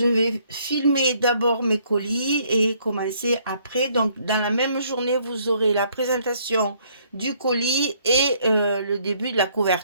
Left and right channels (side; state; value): both; inverted; correlation -0.65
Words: vais filmer d'abord mes colis et commencer après. Donc, dans la même journée, vous aurez la présentation du colis et le début de la